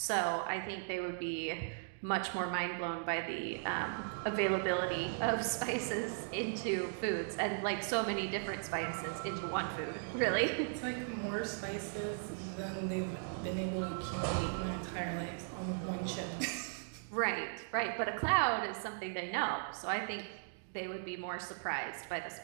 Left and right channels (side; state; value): left; silent; digital silence